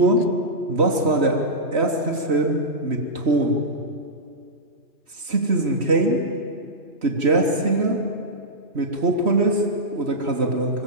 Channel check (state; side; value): late; left; 3.1 ms